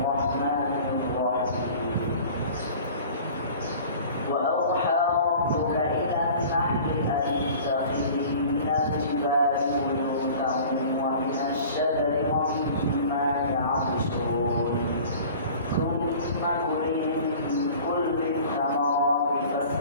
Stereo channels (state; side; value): inverted; both; correlation -0.44